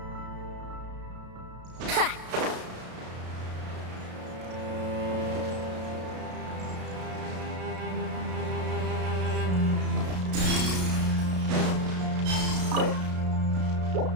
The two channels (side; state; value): left; late; 33 ms